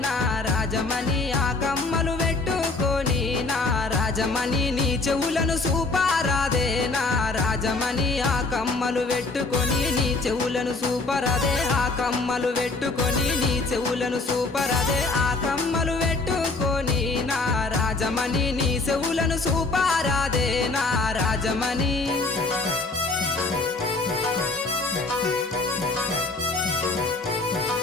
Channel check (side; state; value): right; quieter; 3.5 dB